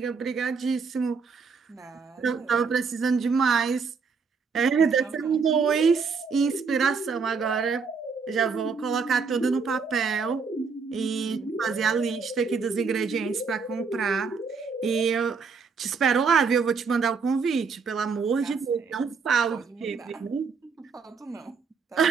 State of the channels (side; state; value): left; quieter; 5.2 dB